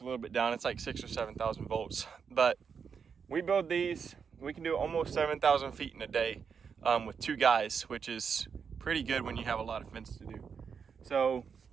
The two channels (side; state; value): left; quieter; 6.4 dB